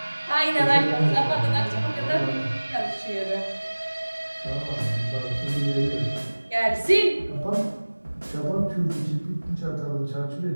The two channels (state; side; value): inverted; both; correlation -1.00